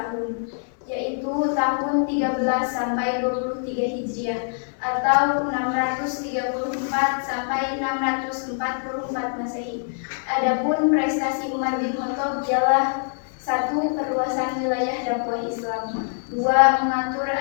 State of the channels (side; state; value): right; silent; digital silence